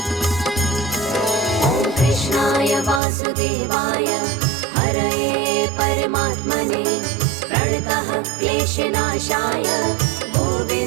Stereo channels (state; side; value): drops out; left; at 3.0 s